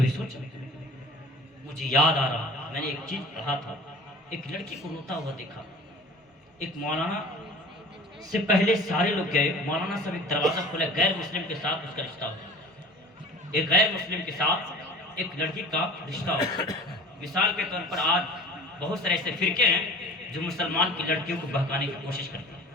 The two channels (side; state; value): both; normal; correlation 0.43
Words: سوچا؟ مجھے یاد آ رہا، میں نے ایک چیز پڑھا تھا ایک لڑکی کو روتا ہوا دیکھا. ایک مولانا سے پہلے سارے لوگ گئے, مولانا صاحب ایک دروازہ کھولے, غیر مسلم کے ساتھ اس کا رشتہ ہوا. ایک غیر مسلم کے ساتھ ایک لڑکی کا رشتہ ہوا. مثال کے طور پر آج بہت سارے ایسے فرقے ہیں جو مسلمان کی لڑکیوں کو بہکانے کی کوشش کرتے ہیں